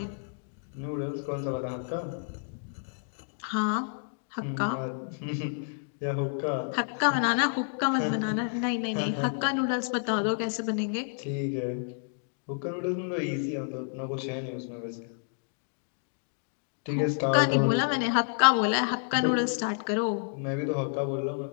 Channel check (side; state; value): right; silent; digital silence